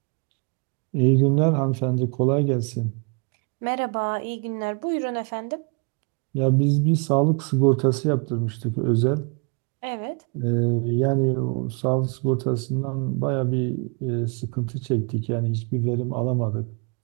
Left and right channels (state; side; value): quieter; left; 35.4 dB